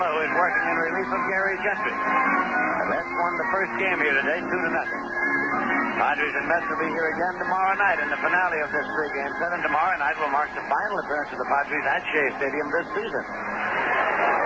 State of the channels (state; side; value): identical; both; correlation 1.00